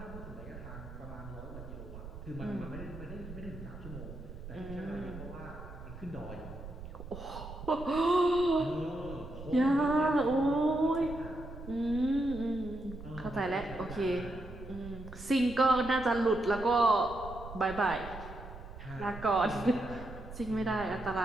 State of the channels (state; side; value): noise; right; rumble, 12 dB below the sound